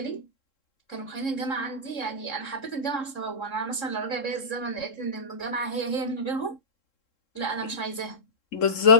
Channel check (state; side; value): late; right; 3.7 ms